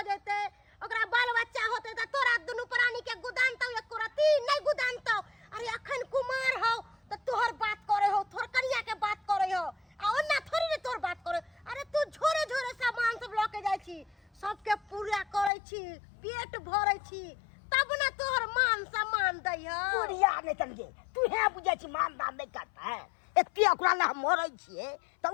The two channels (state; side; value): drops out; right; at 15.5 s